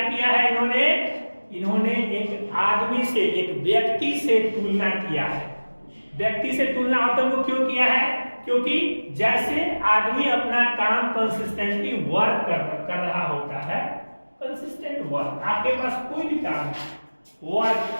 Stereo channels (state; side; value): inverted; both; correlation -1.00